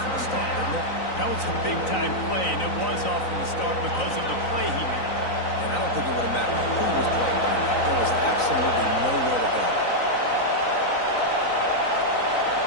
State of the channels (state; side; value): late; right; 3.9 ms